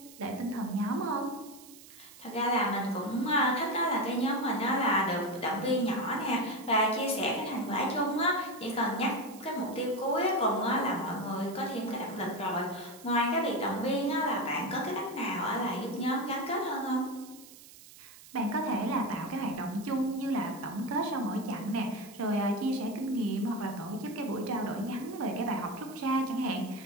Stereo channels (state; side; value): noise; right; hiss, 19 dB below the sound